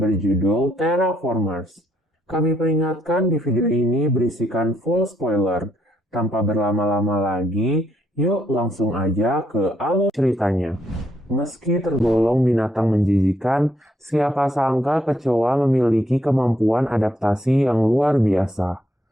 berjudul Terraformers. Kami peringatkan di video ini berisikan full spoiler. Tanpa berlama-lama lagi, yuk langsung aja ke alur ceritanya. Meski tergolong binatang menjijikan, siapa sangka kecoa memiliki kemampuan adaptasi yang luar biasa.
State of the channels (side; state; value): both; normal; correlation 0.73